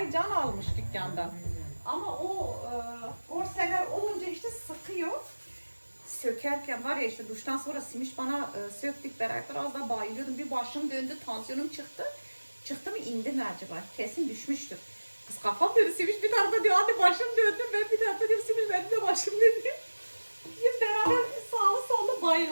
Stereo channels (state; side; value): inverted; both; correlation -1.00